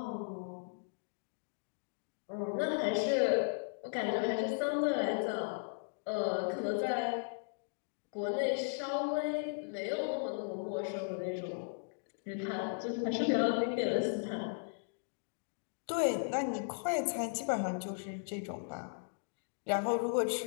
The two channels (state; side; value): silent; right; digital silence